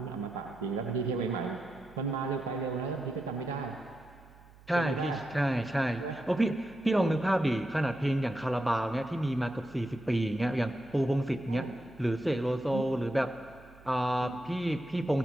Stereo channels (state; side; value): noise; right; hum, 24 dB below the sound